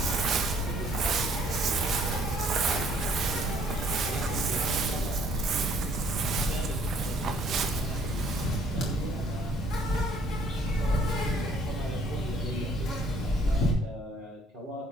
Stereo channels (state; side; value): normal; both; correlation 0.61